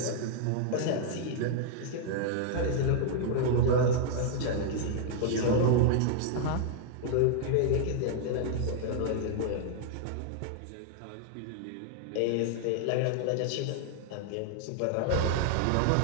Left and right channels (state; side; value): different; both; correlation 0.00